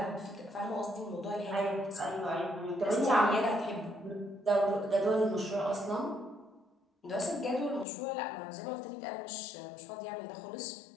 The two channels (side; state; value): right; drops out; at 7.9 s